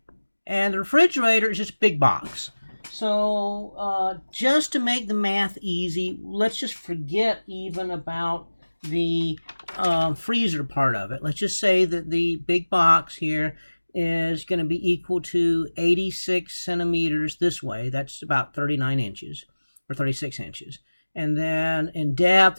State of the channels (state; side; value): inverted; both; correlation -1.00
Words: And the refrigerator is just a big box. So just to make the math easy, let's just forget even about the freezer part of it. Let's just say that the big box here is going to be equal to 86 centimeters this way. That's about 39 inches or 36 inches. And then in depth,